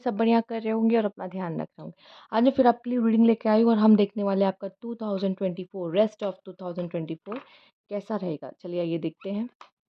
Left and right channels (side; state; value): both; identical; correlation 1.00